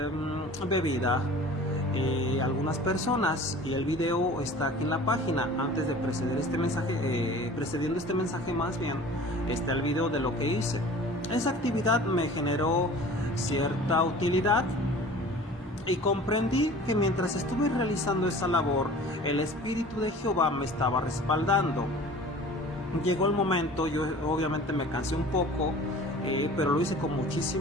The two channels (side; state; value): both; normal; correlation 0.43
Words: bebida a algunas personas, y el video está aquí en la página. Antes de precediendo este mensaje más bien, está el video de lo que hice. Esa actividad me generó cierta utilidad, y comprendí que mientras estuve realizando esa labor, el Espíritu de Jehová me estaba respaldando. Llegó el momento, yo obviamente me cansé un poco, pero lo hice con